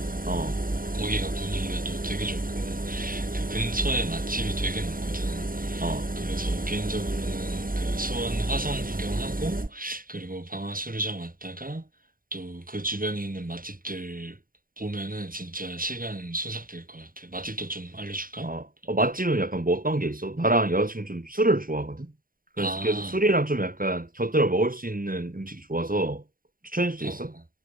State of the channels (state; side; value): late; left; 0.41 ms